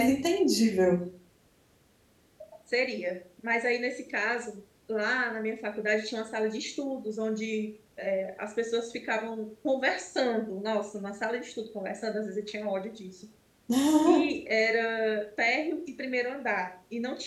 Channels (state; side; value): identical; both; correlation 1.00